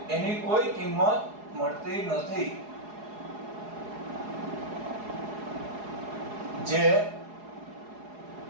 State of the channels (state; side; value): late; left; 4.8 ms